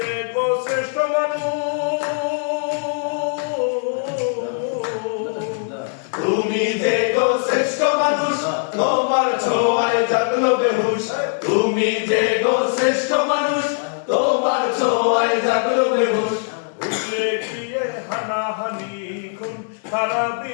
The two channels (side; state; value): right; silent; 65 dB below the other